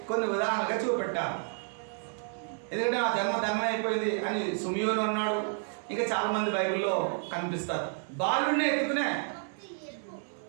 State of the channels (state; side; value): silent; left; 57 dB below the other